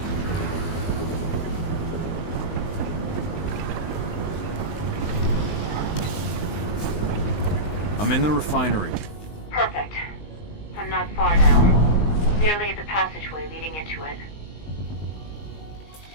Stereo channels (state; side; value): late; right; 19 ms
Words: I'm in the refinery. Perfect. I'm not far now. Nearly at the passageway leading into it.